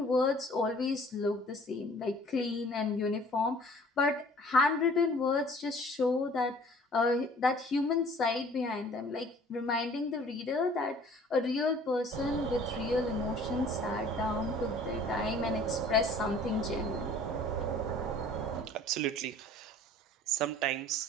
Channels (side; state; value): both; normal; correlation 0.51